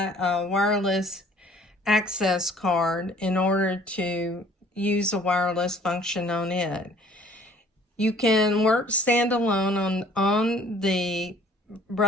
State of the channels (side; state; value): both; normal; correlation 0.55